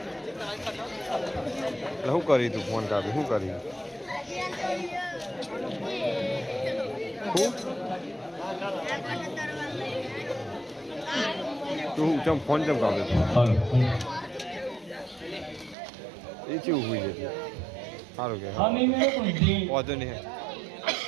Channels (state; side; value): drops out; left; at 15.8 s